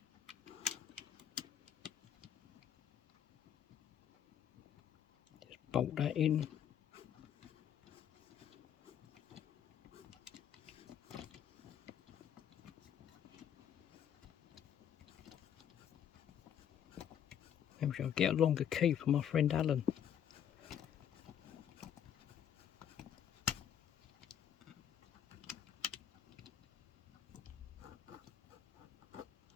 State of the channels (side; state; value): right; quieter; 9.4 dB